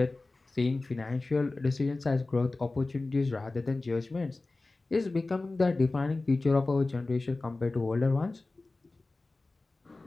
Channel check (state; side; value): quieter; right; 3.3 dB